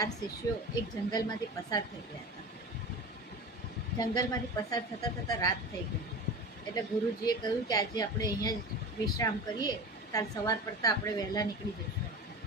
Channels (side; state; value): both; normal; correlation 0.31